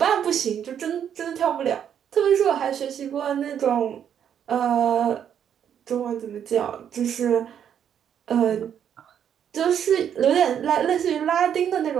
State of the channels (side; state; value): left; quieter; 8.9 dB